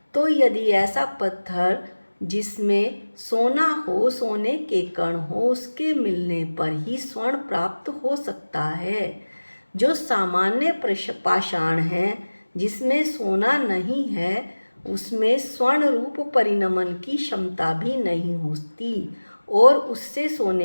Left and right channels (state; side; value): inverted; both; correlation -1.00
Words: तो यदि ऐसा पत्थर जिसमें सोना हो, सोने के कण हो, उसके मिलने पर ही स्वर्ण प्राप्त हो सकता है। जो सामान्य पाषाण है, जिसमें सोना नहीं है, उसमें स्वर्ण रूप परिणमन की क्षमता भी नहीं होती और उससे